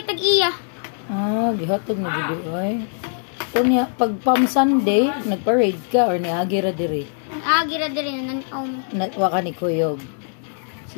tag-iya. Ah, gihatag na gid ay. Unya pag Palm Sunday, nagparade ka or niagi ra diri? Gira diri nan Wa ka ni kuyog.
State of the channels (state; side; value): silent; right; digital silence